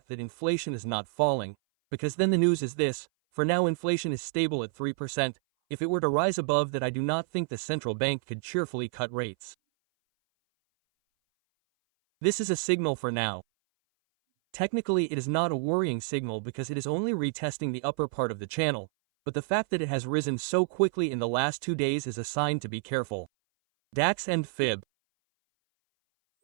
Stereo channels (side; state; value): left; silent; 58 dB below the other